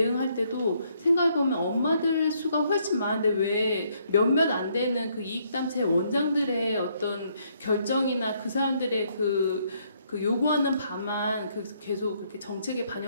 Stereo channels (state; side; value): inverted; both; correlation -0.70